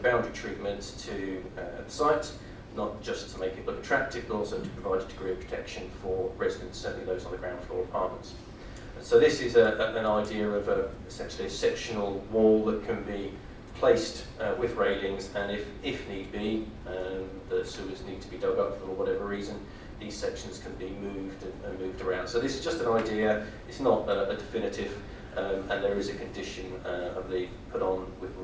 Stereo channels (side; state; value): both; identical; correlation 1.00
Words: boundary treatment to the site, not just to make it look attractive, but also to provide a degree of protection for residents, certainly those on the ground floor apartments. And so this is an idea of essentially a sectional wall that can be placed with railings, and if need be, the sewers need to be dug up for whatever reason, these sections can be moved and moved around. So this is just an idea, it's not a definitive and there is a condition, I believe, put on with